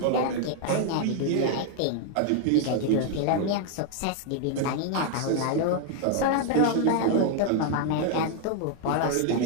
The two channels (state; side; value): different; both; correlation 0.00